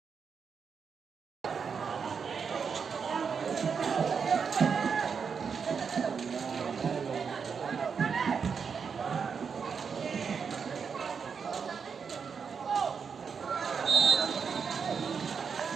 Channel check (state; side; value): quieter; left; 6.1 dB